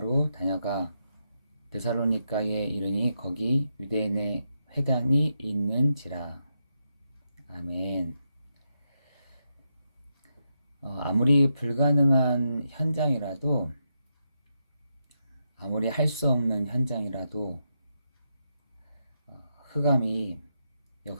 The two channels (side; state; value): both; inverted; correlation -0.84